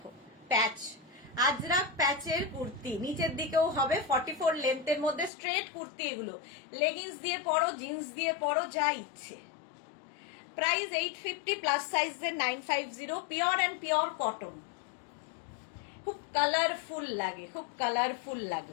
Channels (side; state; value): right; drops out; at 5.3 s